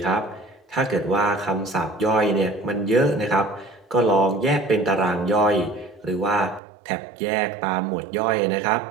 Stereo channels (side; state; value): left; drops out; at 6.6 s